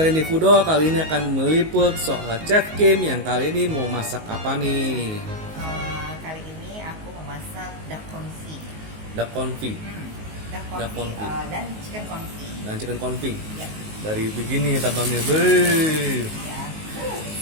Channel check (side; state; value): left; late; 19 ms